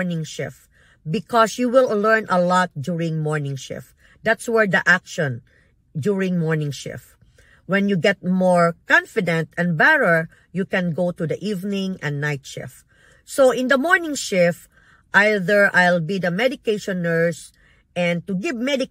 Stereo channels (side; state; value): both; identical; correlation 1.00